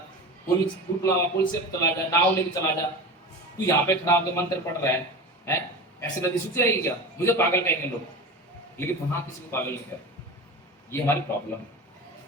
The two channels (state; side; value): normal; both; correlation 0.30